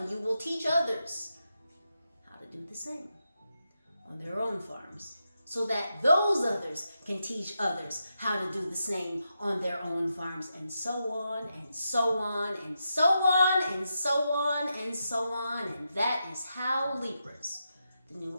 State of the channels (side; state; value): both; inverted; correlation -0.86